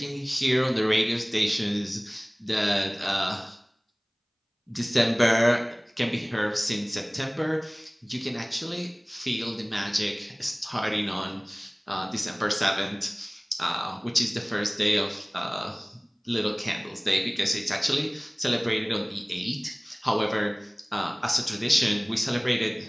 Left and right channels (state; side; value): identical; both; correlation 1.00